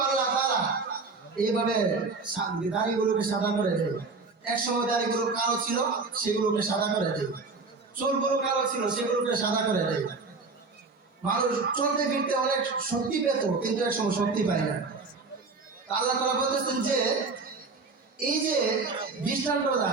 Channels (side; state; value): left; quieter; 4.1 dB